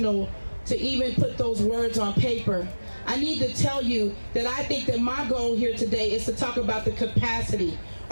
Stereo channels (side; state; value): both; inverted; correlation -1.00